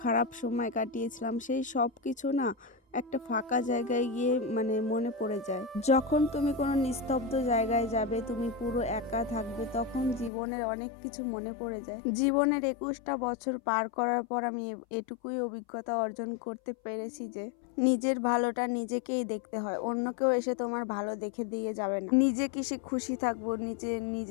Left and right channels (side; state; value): right; drops out; at 10.3 s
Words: খারাপ সময় কাটিয়েছিলাম, সেই সব কিছু না একটা ফাঁকা জায়গায় গিয়ে মনে পড়ে যায়। যখন তুমি কোনো নিস্তব্ধ জায়গায় যাবে, তুমি পুরো একা থাকবে, তখন জীবনের অনেক কিছু মনে পড়ে যায়। জীবনের 21টা বছর পার করার পর আমি এটুকুই অভিজ্ঞতা অর্জন করতে পেরেছি যে নিজের ভালোটা নিজেকেই দেখতে হয়, অন্য কেউ এসে তোমার ভালো দেখে দিয়ে যাবে না। নিজে কিসে খুশি থাকবো,